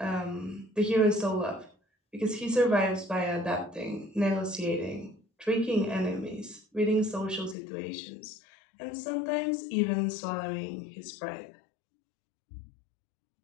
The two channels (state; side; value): drops out; right; at 7.6 s